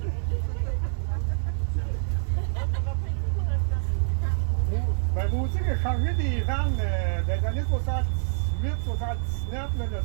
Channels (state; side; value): silent; left; digital silence